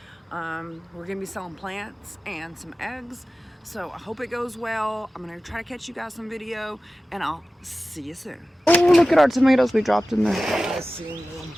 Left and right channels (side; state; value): both; normal; correlation 0.95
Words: We're going to be selling plants and some eggs. So I hope it goes well. I'm going to try to catch you guys some video, and I'll see you soon. Oh, look at our tomatoes we dropped in there. I seen them.